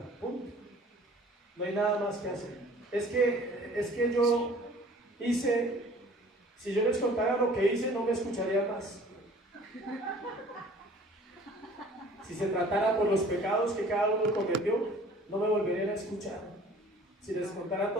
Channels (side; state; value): both; normal; correlation 0.50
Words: Punto. No hay nada más que hacer. Es que yo hice, si yo les contara lo que hice, no me escucharía más. Si se tratara por los pecados que cada uno cometió, no me volverían a escuchar. Si les contara